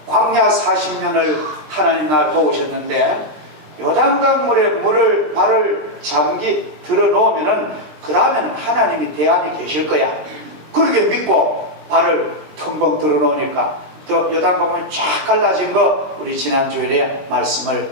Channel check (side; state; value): left; late; 20 ms